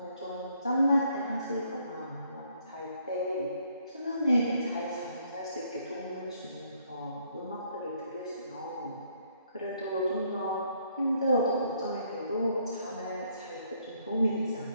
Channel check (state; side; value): inverted; both; correlation -0.69